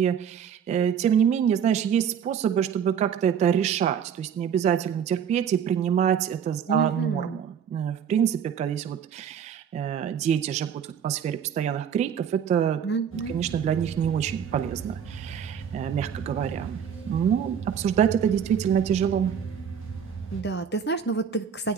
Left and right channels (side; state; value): left; quieter; 8.0 dB